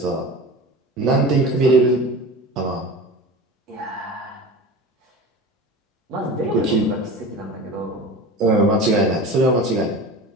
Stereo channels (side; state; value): both; normal; correlation 0.34